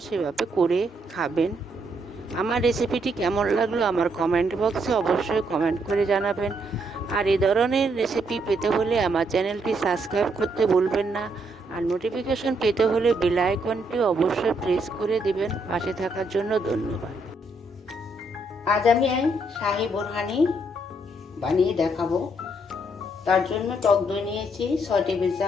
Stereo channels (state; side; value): normal; both; correlation 0.74